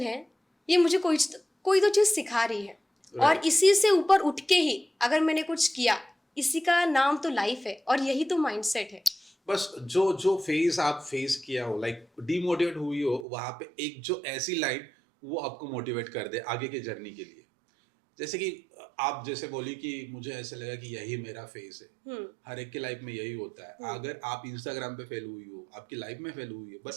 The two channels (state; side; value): drops out; left; at 13.2 s